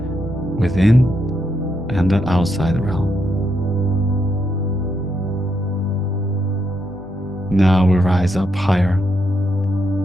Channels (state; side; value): noise; right; hum, 26 dB below the sound